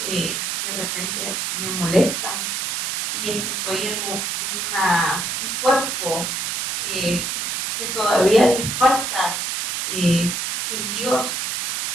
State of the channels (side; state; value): right; noise; hiss, 1 dB below the sound